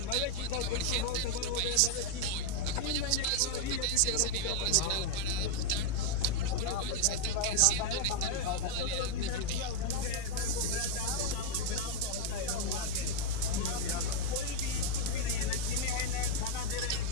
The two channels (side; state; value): both; different; correlation 0.00